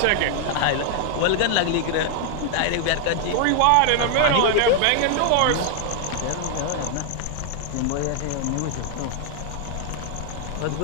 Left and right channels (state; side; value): different; both; correlation 0.00